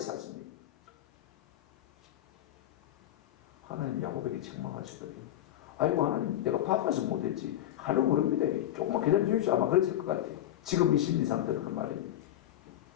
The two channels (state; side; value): quieter; right; 12.6 dB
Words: 하나님 야곱에게 책망하시더니 아이고 하나님 내가 바빠서 못했지 하려고 모릅니다. 조금만 기다려 주십시오. 아마 그랬을 것 같아요. 지금 이 심리 상태는 그 말입니다.